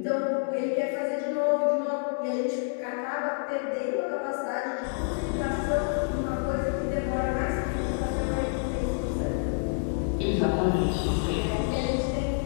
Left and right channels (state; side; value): silent; right; digital silence